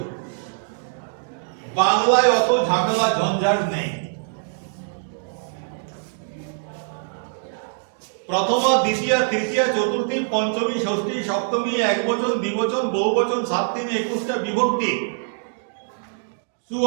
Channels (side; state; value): left; silent; digital silence